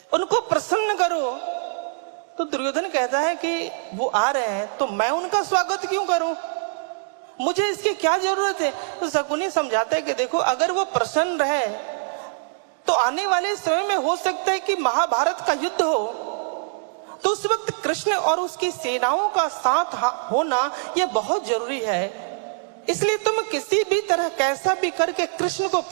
उनको प्रसन्न करो। तो दुर्योधन कहता है कि वो आ रहे हैं तो मैं उनका स्वागत क्यों करूं, मुझे इसकी क्या जरूरत है। तो शकुनी समझाता है कि देखो, अगर वो प्रसन्न रहे तो आने वाले समय में हो सकता है कि महाभारत का युद्ध हो, तो उस वक्त कृष्ण और उसकी सेनाओं का साथ होना यह बहुत जरूरी है। इसलिए तुम किसी भी तरह कैसा भी करके कृष्ण को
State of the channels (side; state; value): left; silent; digital silence